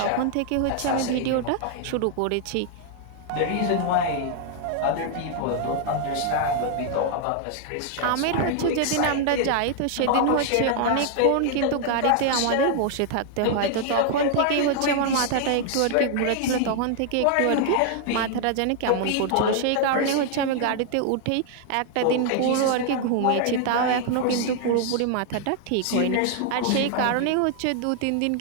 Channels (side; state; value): both; different; correlation 0.00